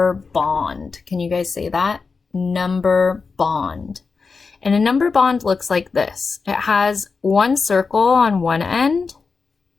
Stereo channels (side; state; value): right; quieter; 4.8 dB